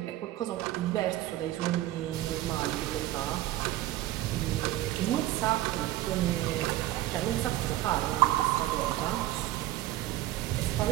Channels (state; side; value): quieter; left; 15.1 dB